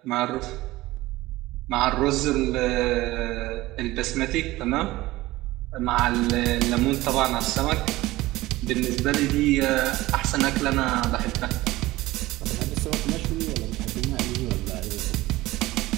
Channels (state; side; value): quieter; left; 18.3 dB